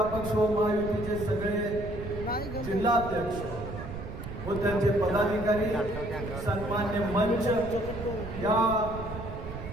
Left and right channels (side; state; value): right; noise; rumble, 9 dB below the sound